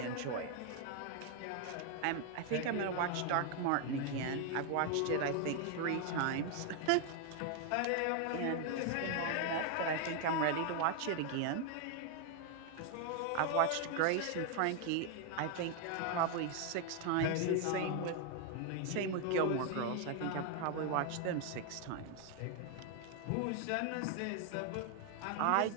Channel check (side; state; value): both; different; correlation 0.01